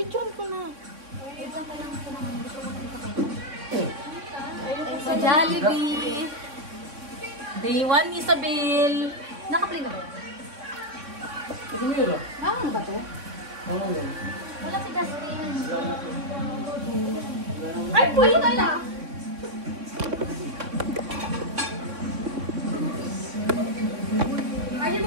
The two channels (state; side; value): late; left; 3.6 ms